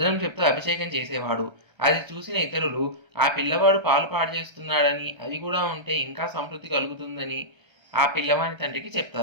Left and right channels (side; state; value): left; late; 1.3 ms